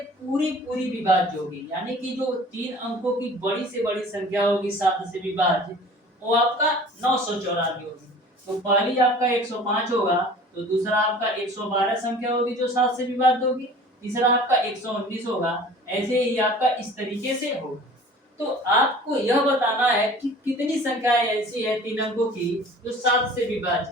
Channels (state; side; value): normal; both; correlation 0.45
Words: पूरी विभाज्य होगी। यानी कि जो 3 अंकों की बड़ी से बड़ी संख्या होगी 7 से विभाज्य, वो आपका 994 होगी। तो पहली आपका 105 होगा, तो दूसरा आपका 112 संख्या होगी जो 7 से विभाज्य होगी, तीसरा आपका 119 होगा। ऐसे ही आपका इस तरीके से होगा। तो आपको यह बताना है कि कितनी संख्याएं ऐसी है 3 अंकों की जो 7 से